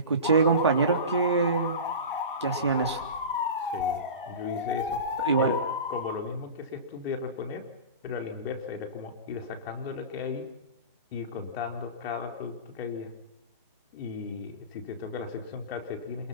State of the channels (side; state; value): both; inverted; correlation -0.31